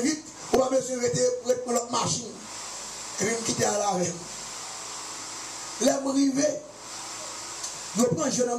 on va besoin de prendre notre machine. Et puis je quitter à la veille. Là, je arrive, je prends un jeune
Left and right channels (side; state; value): both; identical; correlation 1.00